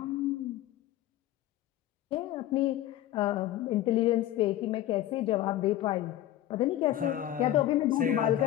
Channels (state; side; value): quieter; right; 13.4 dB